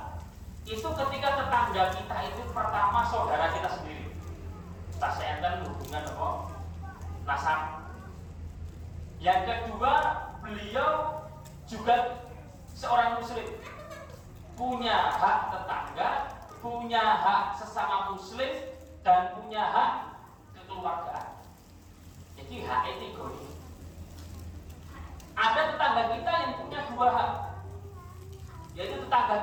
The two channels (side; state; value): both; identical; correlation 1.00